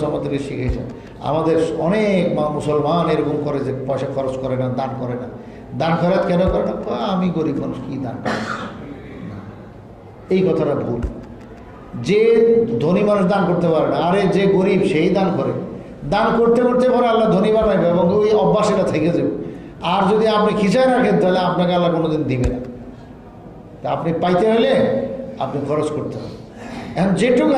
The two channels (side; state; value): both; identical; correlation 1.00